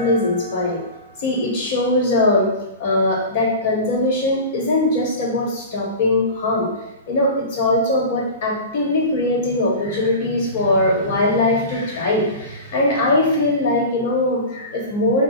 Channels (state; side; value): inverted; both; correlation -0.31